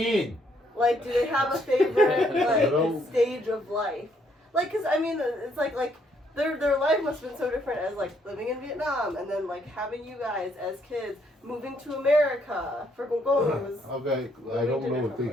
Like, do they have a favorite stage of life? Like, cause I mean, it's like their life must have been so different as like living in Vietnam and then like having you guys as kids moving to America for Gongong was. Okay, I don't know if they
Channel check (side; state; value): both; normal; correlation 0.70